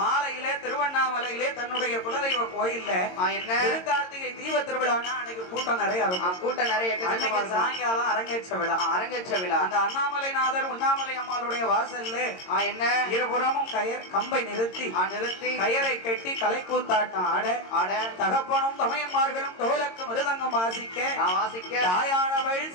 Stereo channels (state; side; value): late; right; 22 ms